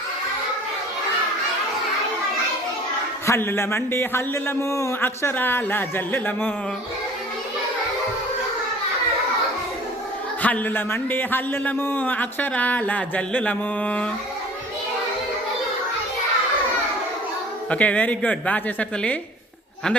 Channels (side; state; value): both; normal; correlation 0.47